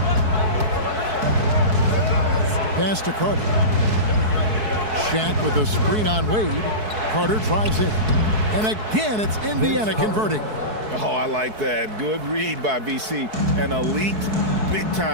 Pass to Carter. Shaq with a screen on Wade. Carter drives in. And again, it's Indiana converting. Oh, I like that. Good read by BC. An elite,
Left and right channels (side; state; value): left; late; 4.6 ms